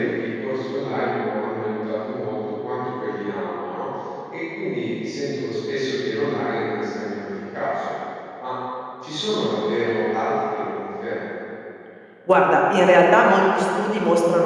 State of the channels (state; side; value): identical; both; correlation 1.00